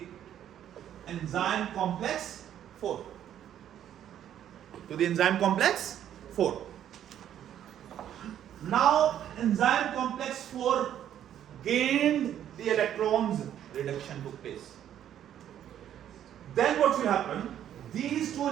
enzyme complex 4. To the enzyme complex 4. Now enzyme complex 4 gained the electrons, reduction took place. Then what will happen? These 2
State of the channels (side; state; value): left; quieter; 10.5 dB